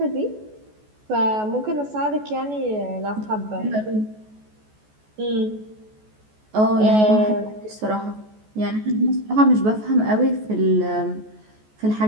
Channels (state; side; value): late; left; 14 ms